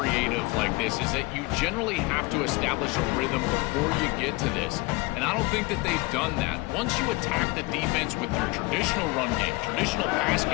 like this, is that you generally have to establish a rhythm before you get to this. And I don't think that they've done that. Once you attack the defense with your traditional run game, traditional pass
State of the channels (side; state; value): right; quieter; 24.2 dB